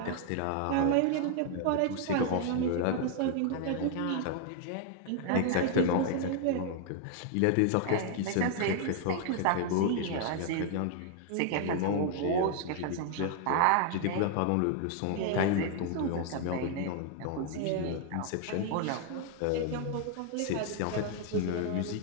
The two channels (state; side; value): different; both; correlation 0.00